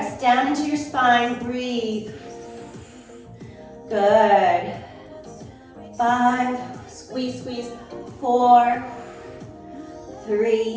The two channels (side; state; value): both; identical; correlation 1.00